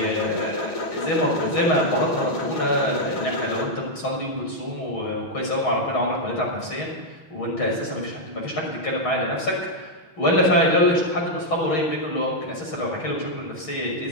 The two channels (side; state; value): right; late; 6.3 ms